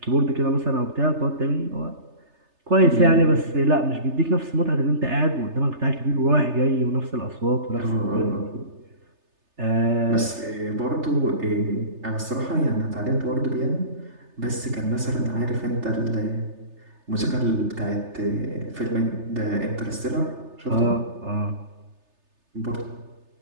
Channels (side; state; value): left; late; 3.3 ms